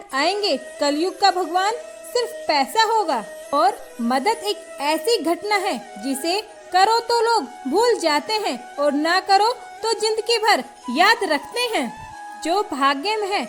आएंगे। कलयुग का भगवान सिर्फ पैसा होगा, और मदद एक ऐसी घटना है जिसे करो तो लोग भूल जाते हैं, और ना करो तो जिंदगी भर याद रखते हैं। जो भाग्य में है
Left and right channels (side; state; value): both; identical; correlation 1.00